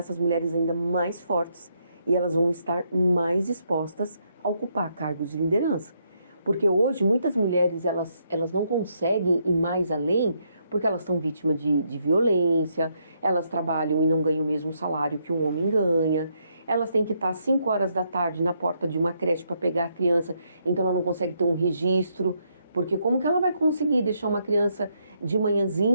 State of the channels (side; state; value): both; inverted; correlation -0.76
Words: mulheres ainda mais fortes e elas vão estar mais dispostas a ocupar cargos de liderança. Porque hoje muitas mulheres elas não conseguem ir mais além porque elas estão vítimas de violência, elas trabalham e não ganham o mesmo salário que um homem ganha, elas têm que estar às 5 horas da tarde na porta de uma creche para pegar a criança, então ela não consegue ter um registro, porque como que ela vai conseguir deixar uma criança de